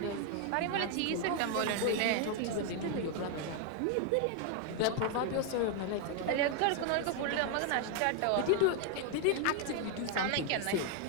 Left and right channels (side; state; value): both; different; correlation 0.01